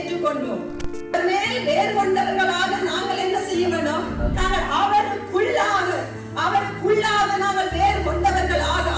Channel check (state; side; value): identical; both; correlation 1.00